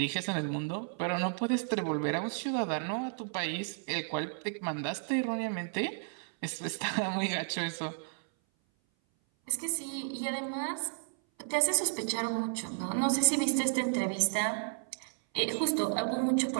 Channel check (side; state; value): left; silent; 56 dB below the other